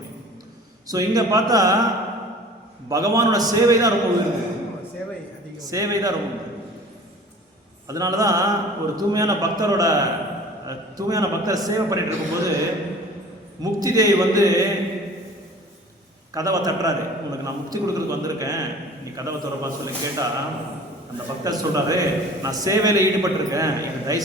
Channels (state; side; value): normal; both; correlation 0.44